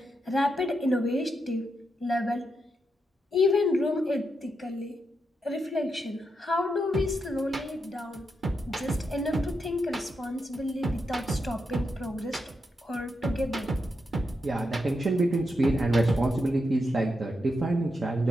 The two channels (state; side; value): normal; both; correlation 0.84